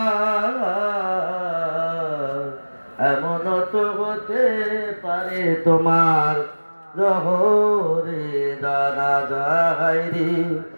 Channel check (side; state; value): both; inverted; correlation -1.00